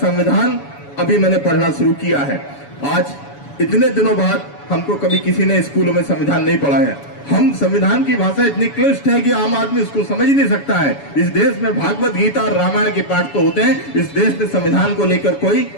अभी मैंने पढ़ना शुरू किया है। आज इतने दिनों बाद हमको कभी किसी ने स्कूलों में संविधान नहीं पढ़ा है। हम संविधान की भाषा इतनी क्लिष्ट है कि आम आदमी उसको समझ ही नहीं सकता है। इस देश में भागवत गीता और रामायण के पाठ तो होते हैं, इस देश में संविधान को लेकर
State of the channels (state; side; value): late; right; 7.1 ms